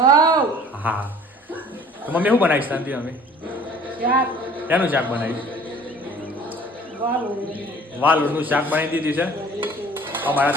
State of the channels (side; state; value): both; normal; correlation 0.50